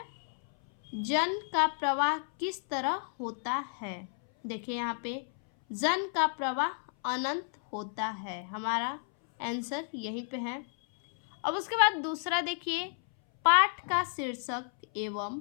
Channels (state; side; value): silent; right; 57 dB below the other